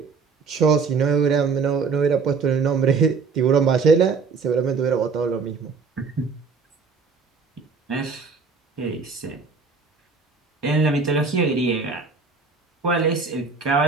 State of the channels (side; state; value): left; quieter; 4.9 dB